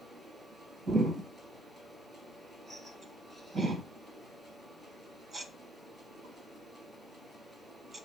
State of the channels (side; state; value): both; normal; correlation 0.62